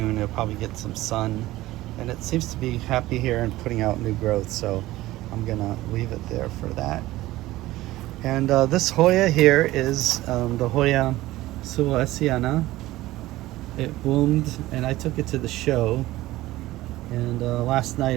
It'll probably get some sun, and it seems to be happy here and putting out new growth, so I'm gonna leave it there for that. And this Hoya here is the Hoya suculent. It bloomed, and I took it to the show, and last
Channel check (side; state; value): left; quieter; 17.0 dB